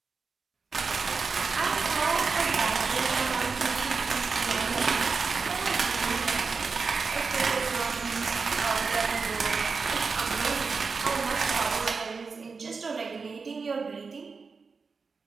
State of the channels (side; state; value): left; quieter; 4.8 dB